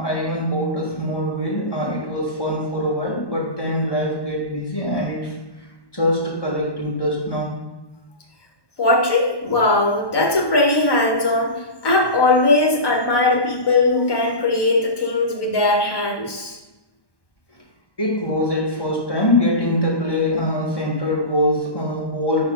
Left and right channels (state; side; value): late; right; 1.1 ms